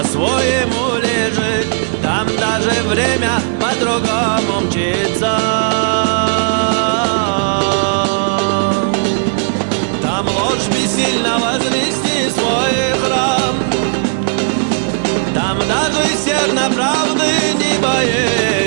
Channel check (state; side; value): silent; left; 69 dB below the other